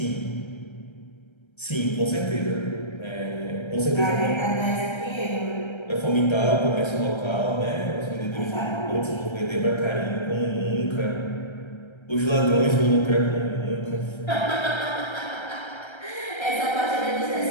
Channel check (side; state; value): right; late; 1.3 ms